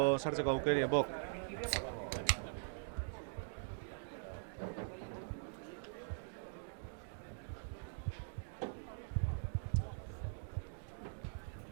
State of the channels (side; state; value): left; silent; digital silence